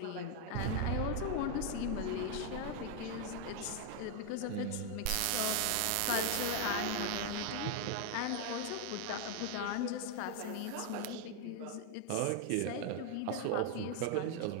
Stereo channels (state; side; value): different; both; correlation 0.01